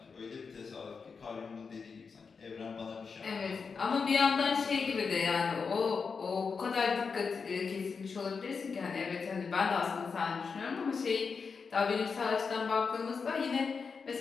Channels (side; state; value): right; quieter; 5.3 dB